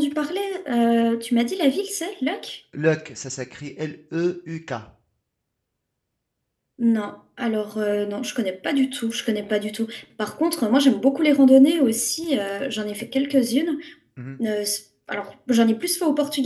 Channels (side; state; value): both; identical; correlation 1.00